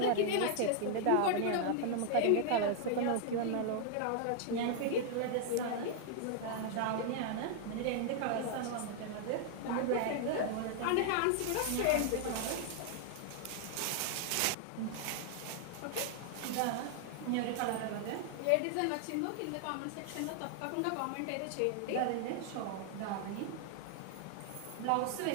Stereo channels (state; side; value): different; both; correlation 0.00